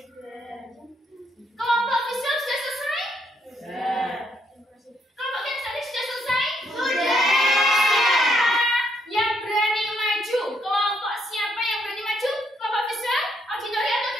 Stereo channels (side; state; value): both; normal; correlation 0.73